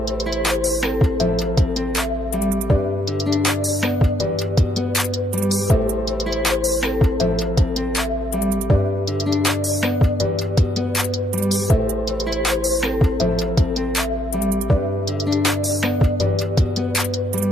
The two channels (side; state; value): both; normal; correlation 0.73